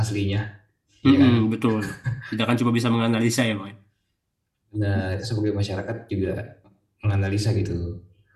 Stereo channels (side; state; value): both; identical; correlation 1.00